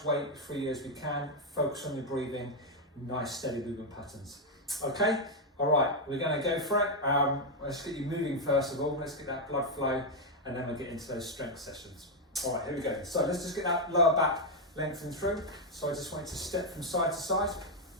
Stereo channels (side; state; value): both; normal; correlation 0.01